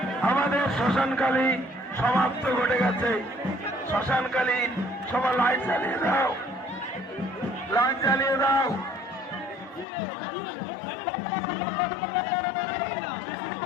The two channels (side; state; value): right; drops out; at 9.9 s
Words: আমাদের শ্মশানকালী সমাপ্ত ঘটে গেছে। শ্মশানকালী সবার লাইট জ্বালিয়ে দাও, লাইট জ্বালিয়ে দাও।